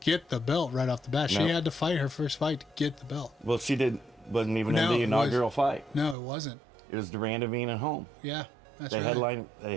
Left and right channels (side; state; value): left; drops out; at 6.2 s